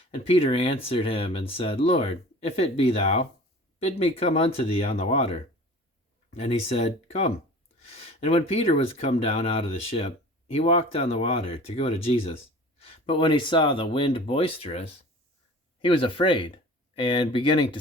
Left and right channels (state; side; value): normal; both; correlation 0.42